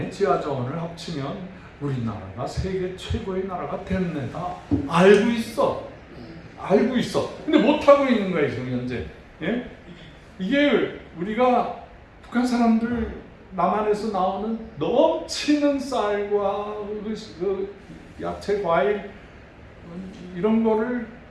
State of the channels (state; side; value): identical; both; correlation 1.00